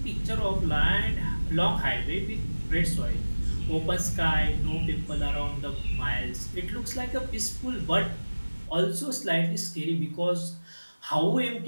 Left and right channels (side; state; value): both; inverted; correlation -1.00